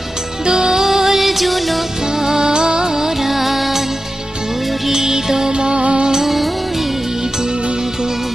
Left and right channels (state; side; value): normal; both; correlation 0.92